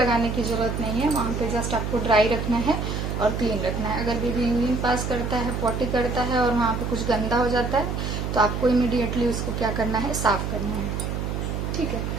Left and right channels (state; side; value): noise; right; hum, 3 dB below the sound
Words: की जरूरत नहीं है, वहाँ पे जस्ट आपको ड्राई रखना है और क्लीन रखना है। अगर बेबी यूरिन पास करता है, पॉटी करता है और वहाँ पे कुछ गंदा हो जाता है तो आपको इमीडिएटली उसको क्या करना है, साफ करना है। ठीक है,